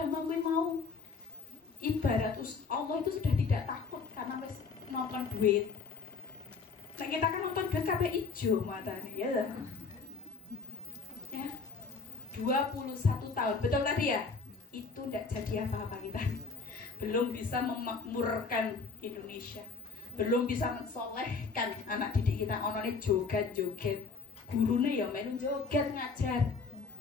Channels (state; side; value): quieter; right; 4.8 dB